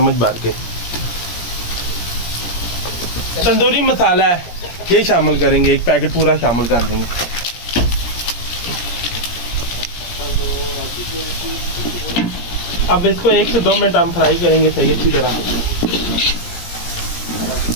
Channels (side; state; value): right; late; 17 ms